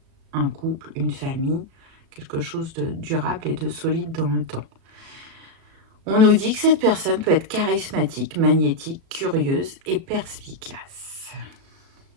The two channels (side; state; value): left; late; 37 ms